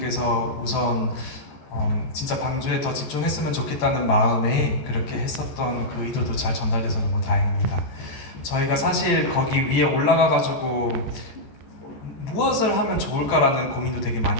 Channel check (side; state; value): right; late; 14 ms